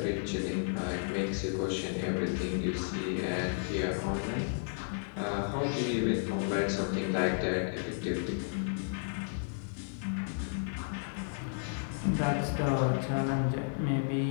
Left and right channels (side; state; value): right; silent; digital silence